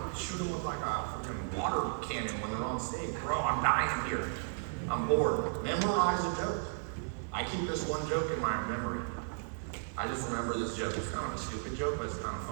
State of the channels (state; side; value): silent; left; digital silence